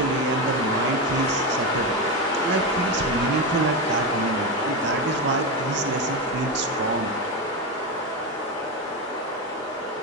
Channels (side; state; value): both; normal; correlation 0.14